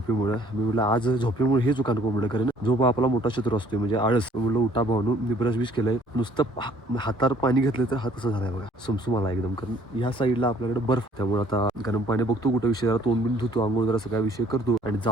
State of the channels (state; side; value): normal; both; correlation 0.59